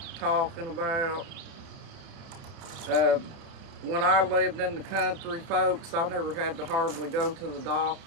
talking about. Uh, when I lived in the country, folks, I never had to hardly go to the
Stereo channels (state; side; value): late; left; 30 ms